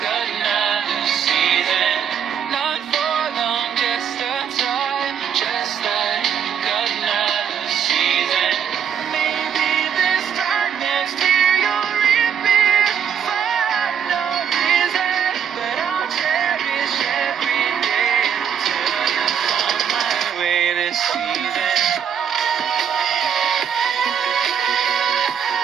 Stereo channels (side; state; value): left; quieter; 8.1 dB